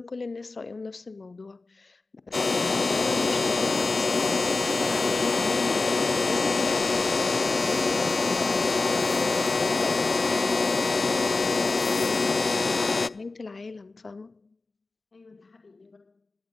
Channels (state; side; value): quieter; right; 3.6 dB